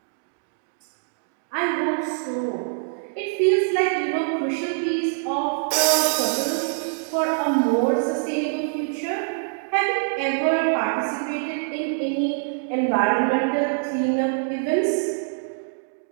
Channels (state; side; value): silent; left; digital silence